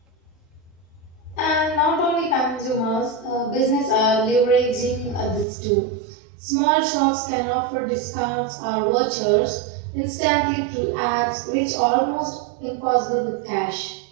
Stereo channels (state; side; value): drops out; left; at 5.5 s